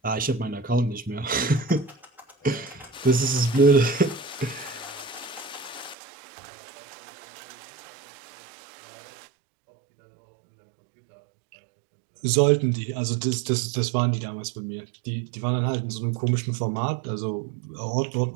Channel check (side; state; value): left; drops out; at 6.0 s